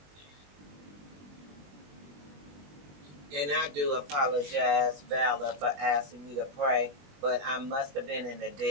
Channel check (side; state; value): left; late; 21 ms